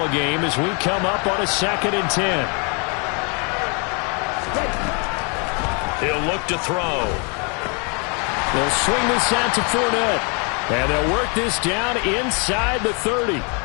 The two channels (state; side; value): quieter; right; 35.1 dB